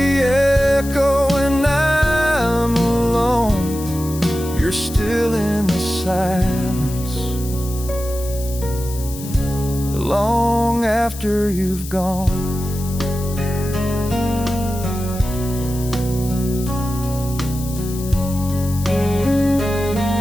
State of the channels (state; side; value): noise; left; hiss, 13 dB below the sound